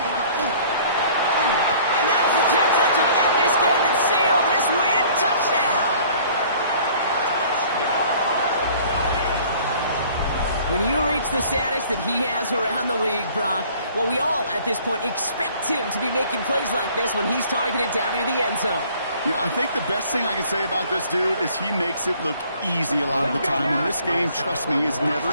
And that is the catch that should end this game and seal this win. Touchdown! When you reach the status that he has around the league, Brock, well, we all, at this point, expect him to be making plays like this when he's targeted down near the end zone. Yeah, I think the best thing I can say about this dude is he makes it look easy a lot of the time. And this game, trust me, is never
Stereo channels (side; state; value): both; inverted; correlation -0.54